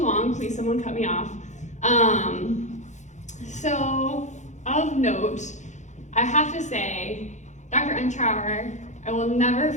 long, please someone cut me off. So of note, I have to say, Dr. Untrauer, I will never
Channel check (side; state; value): right; late; 0.35 ms